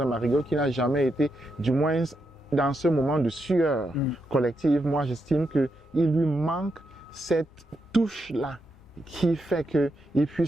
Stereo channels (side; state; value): both; normal; correlation 0.83